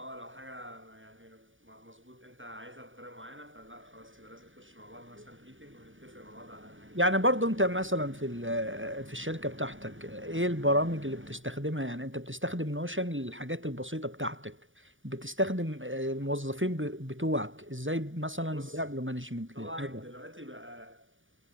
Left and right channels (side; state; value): left; late; 0.57 ms